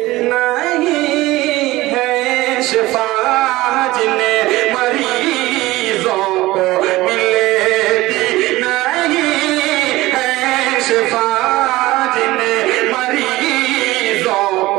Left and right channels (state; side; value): quieter; left; 18.5 dB